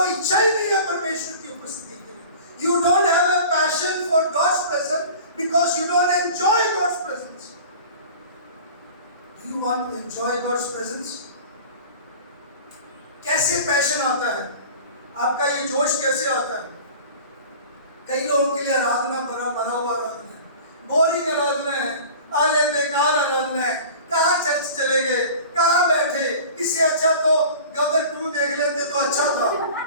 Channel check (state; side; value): inverted; both; correlation -0.40